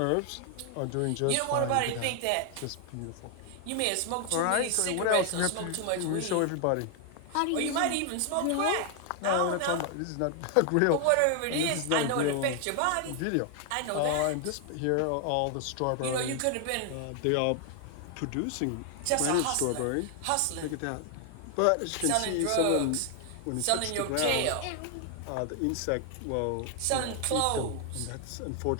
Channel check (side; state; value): both; different; correlation 0.00